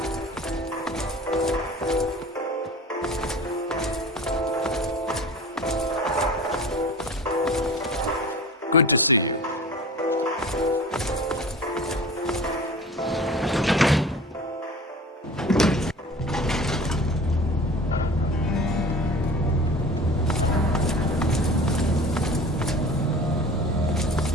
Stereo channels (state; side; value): normal; both; correlation 0.39